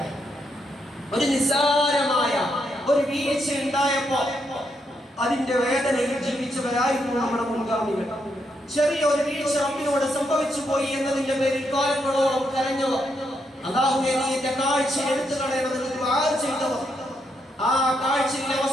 നിസ്സാരമായ ഒരു വീഴ്ച ഉണ്ടായപ്പോ അതിന്റെ വേദനയിൽ ജീവിച്ചവരായിരുന്നു നമ്മുടെ മുൻഗാമികൾ. ചെറിയ ഒരു വീഴ്ച റബ്ബിനോട് സംഭവിച്ചു പോയി എന്നതിന്റെ പേരിൽ കാലങ്ങളോളം കരഞ്ഞവർ, അല്ലാഹുവേ നീ എന്റെ കാഴ്ച എടുത്തു കളയണമെന്ന് ദുആ ചെയ്തവർ, ആ കാഴ്ചയിലെ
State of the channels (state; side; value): normal; both; correlation 0.79